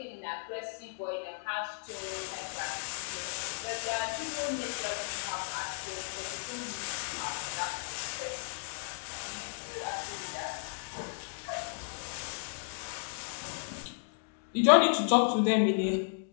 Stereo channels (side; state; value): right; silent; digital silence